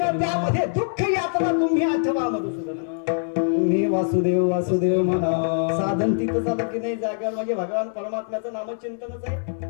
त्यामध्ये दुःख यातना तुम्ही आठवा मधुसूदन. तुम्ही वासुदेव वासुदेव म्हणा. साधन तिथं झालं की नाही जागा म्हणजे भगवान परमात्म्याचं नामचिंतनच आहे.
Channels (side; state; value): right; silent; digital silence